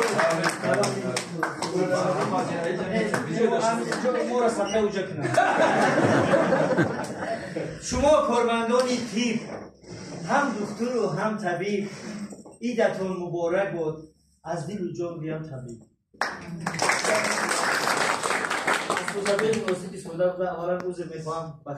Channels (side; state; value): both; identical; correlation 1.00